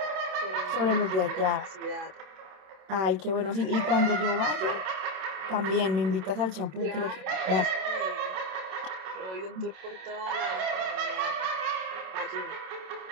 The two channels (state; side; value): late; left; 27 ms